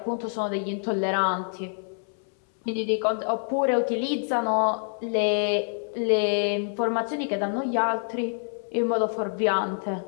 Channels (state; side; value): silent; right; 60 dB below the other